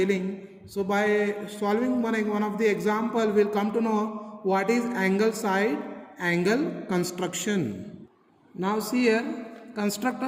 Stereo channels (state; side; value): identical; both; correlation 1.00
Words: So by solving one of the example, we'll come to know what is angle side angle construction. Now see here, construct